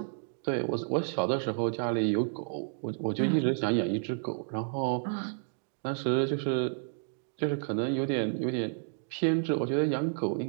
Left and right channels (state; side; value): silent; left; digital silence